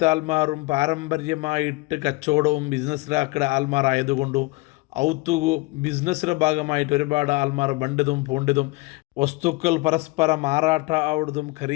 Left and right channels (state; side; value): quieter; right; 23.1 dB